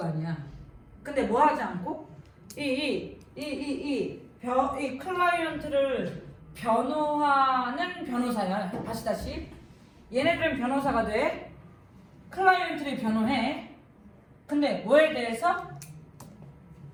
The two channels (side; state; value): both; identical; correlation 1.00